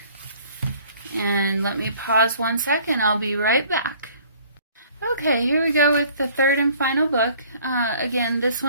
and let me pause 1 second. I'll be right back. Okay, here we go with the third and final book. Again, this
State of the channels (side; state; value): both; inverted; correlation -0.55